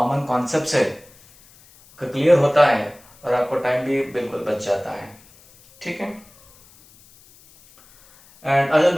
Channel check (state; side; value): noise; left; hiss, 27 dB below the sound